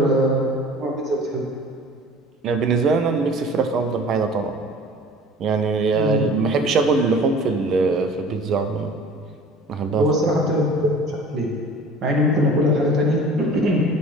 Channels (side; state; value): both; normal; correlation 0.45